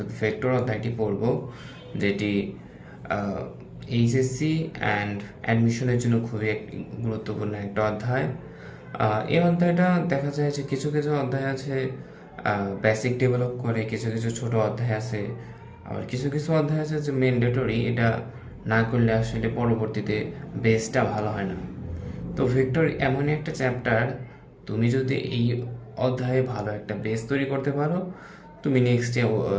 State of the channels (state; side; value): identical; both; correlation 1.00